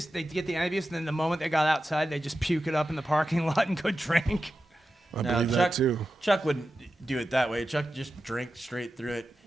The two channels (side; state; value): both; normal; correlation 0.92